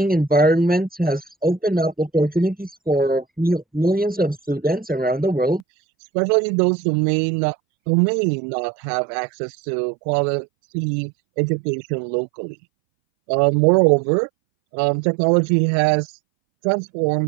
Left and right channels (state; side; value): drops out; left; at 5.7 s